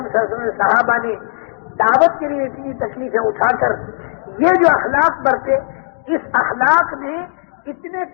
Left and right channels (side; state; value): right; silent; 60 dB below the other